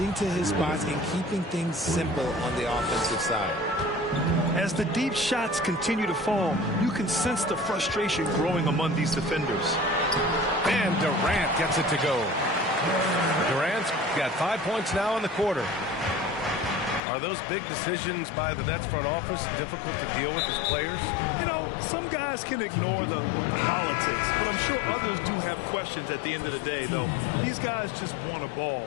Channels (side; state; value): right; drops out; at 17.0 s